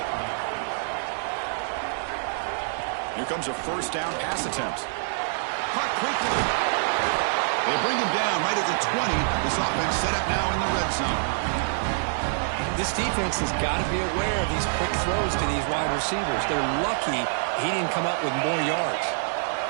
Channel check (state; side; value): silent; left; digital silence